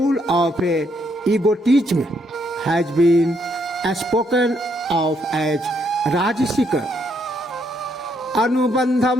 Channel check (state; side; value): normal; both; correlation 0.74